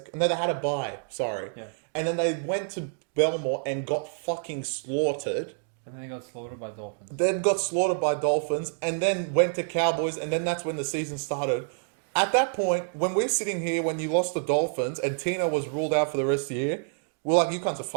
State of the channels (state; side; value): silent; left; digital silence